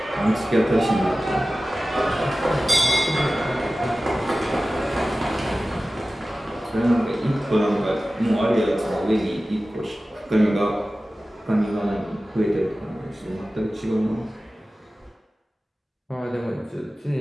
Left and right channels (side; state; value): both; normal; correlation 0.96